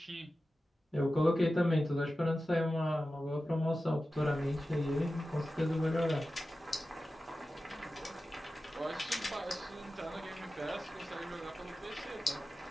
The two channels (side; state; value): both; normal; correlation 0.94